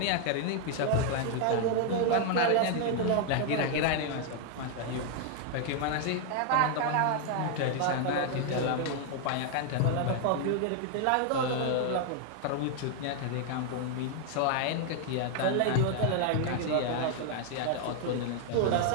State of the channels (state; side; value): different; both; correlation 0.00